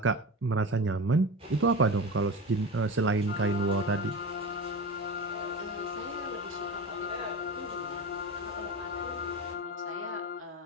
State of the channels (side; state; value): both; normal; correlation 0.27